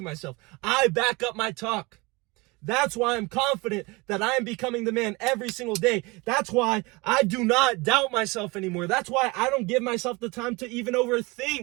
myself. I back up my talk. That's why I'm confident that I am becoming the man every single day. That's why I do not doubt myself anymore. That's why I don't give myself the time to even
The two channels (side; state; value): left; quieter; 24.8 dB